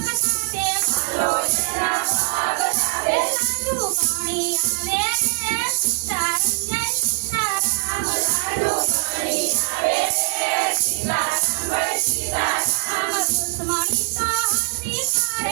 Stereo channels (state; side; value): silent; left; digital silence